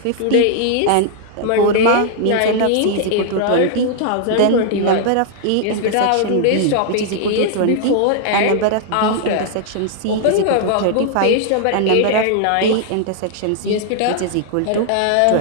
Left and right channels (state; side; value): different; both; correlation 0.00